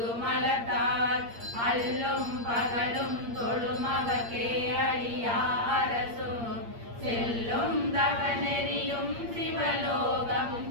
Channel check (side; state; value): left; late; 8.6 ms